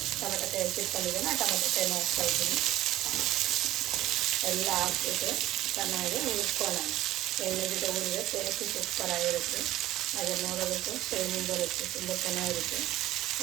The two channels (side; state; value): left; quieter; 15.2 dB